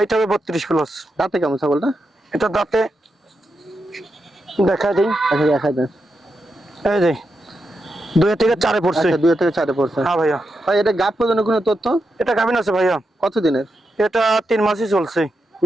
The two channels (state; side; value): normal; both; correlation 0.86